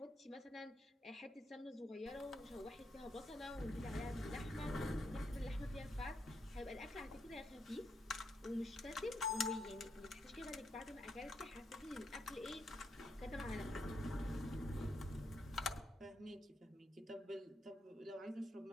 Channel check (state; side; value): normal; both; correlation 0.80